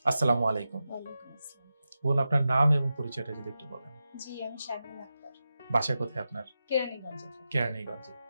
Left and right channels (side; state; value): both; inverted; correlation -0.91